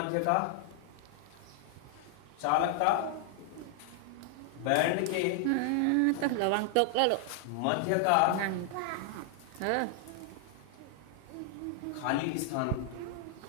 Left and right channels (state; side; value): different; both; correlation 0.00